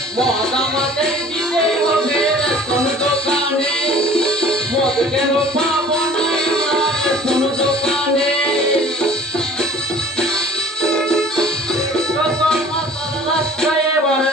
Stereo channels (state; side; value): normal; both; correlation 0.49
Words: মদ আমাদের দিতে হবে রেশন দোকানে মদ কেন পাবো না রেশন দোকানে যত মাথা রাস্তায় এবার